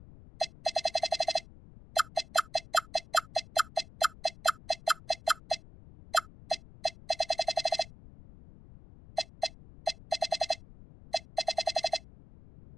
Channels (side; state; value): left; noise; rumble, 20 dB below the sound